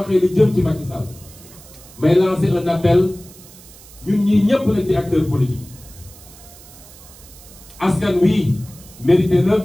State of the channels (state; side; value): noise; right; hiss, 21 dB below the sound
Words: li jëm ci Macky Sall may lancer un appel ñun ñii ñëpp nag di acteurs politiques askan wi mérité na